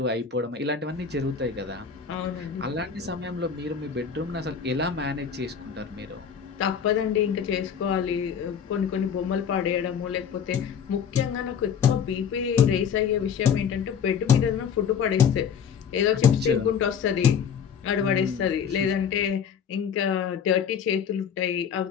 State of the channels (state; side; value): quieter; right; 7.3 dB